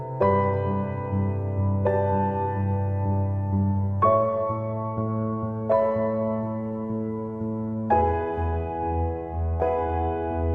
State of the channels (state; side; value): identical; both; correlation 1.00